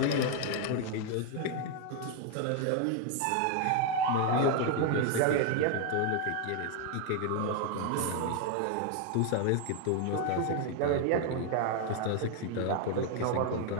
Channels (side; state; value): both; different; correlation 0.01